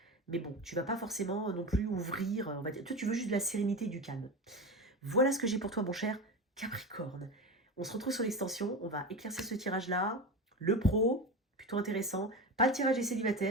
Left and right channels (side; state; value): both; normal; correlation 0.24